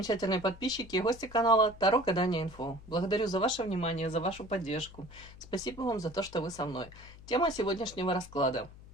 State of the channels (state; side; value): noise; left; hum, 19 dB below the sound